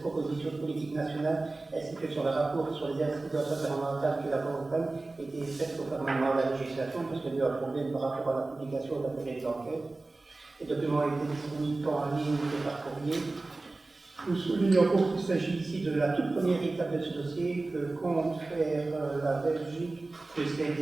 proposition de politique nationale ainsi que sur le rapport sur les incidences environnementales qui l'accompagnent était faite conformément à la législation parce qu'il y a eu un problème par rapport à la publication de la période d'enquête. Les documents ont été disponibles tant en ligne que par courrier. Nous soulignons qu'il s'agit ici de la toute première étape de ce dossier que compte faire la Belgique de ces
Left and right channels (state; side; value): quieter; left; 3.2 dB